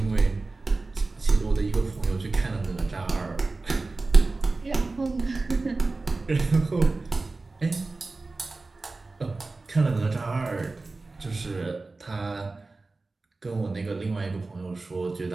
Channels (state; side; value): quieter; left; 3.5 dB